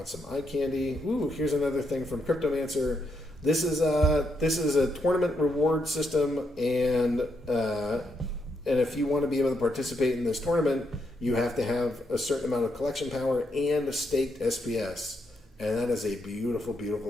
some eye candy. Ooh, here's another thing from Cryptomancer. This is a tournament reward system, and if you want to be able to participate in this tournament, you have to have a certain amount of collection power and a staked SPS, and that is a beautiful,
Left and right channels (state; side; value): normal; both; correlation 0.79